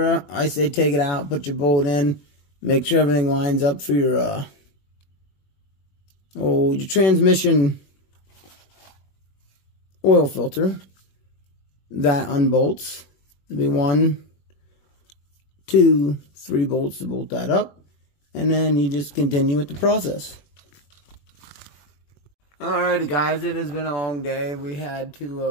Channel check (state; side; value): late; right; 21 ms